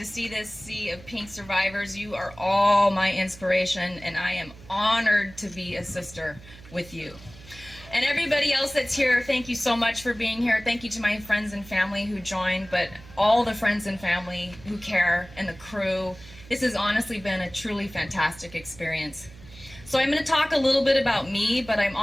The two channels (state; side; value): noise; right; hum, 20 dB below the sound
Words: see this sea of pink survivors. You are all my inspiration, and I am honored to be a sister with you. And everybody else that's here, thank you so much for being here. Thank you to my friends and family who joined, but all the friends and family who care, and the crew. This has honestly been a truly fantastic experience. So I'm going to talk a little bit about me, but I'm